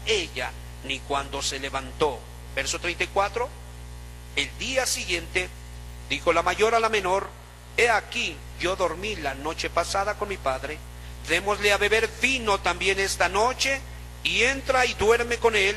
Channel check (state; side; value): identical; both; correlation 1.00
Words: ella, ni cuando se levantó. Verso 34. El día siguiente dijo la mayor a la menor: he aquí, yo dormí la noche pasada con mi padre, démosle a beber vino también esta noche, y entra y duerme con